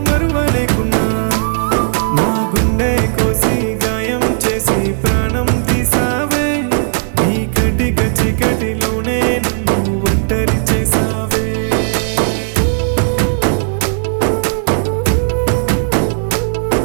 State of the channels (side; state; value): left; silent; digital silence